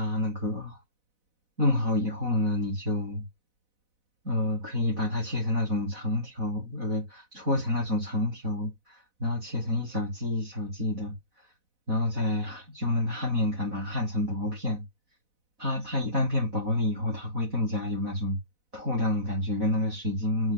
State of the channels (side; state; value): left; late; 4.0 ms